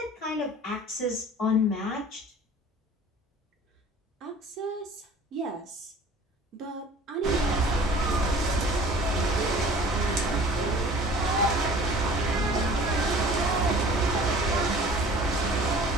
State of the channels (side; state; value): both; normal; correlation 0.47